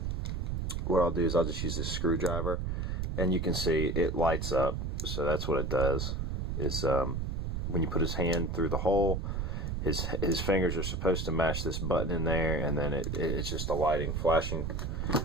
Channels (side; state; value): right; noise; rumble, 1 dB below the sound